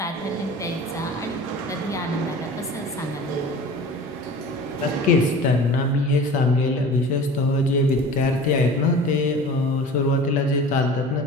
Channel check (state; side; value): normal; both; correlation 0.40